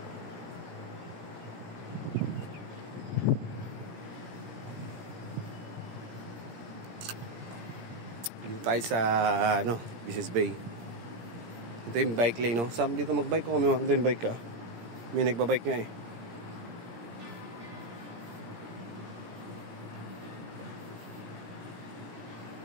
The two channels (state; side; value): late; left; 18 ms